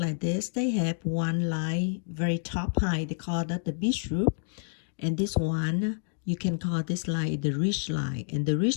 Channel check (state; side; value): silent; right; digital silence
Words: this. They have one line very top high. They call that the beach roof. And this one, you can call this line the ridge line. And the